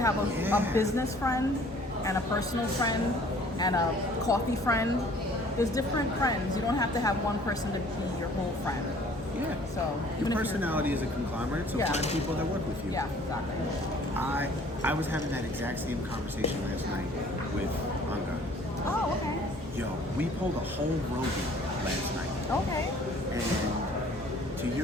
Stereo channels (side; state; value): both; normal; correlation 0.54